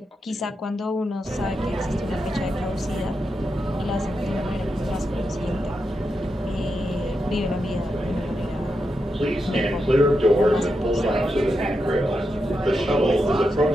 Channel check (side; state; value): both; normal; correlation 0.86